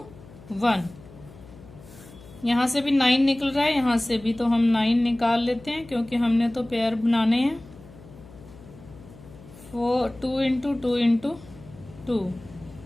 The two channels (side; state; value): left; noise; hum, 20 dB below the sound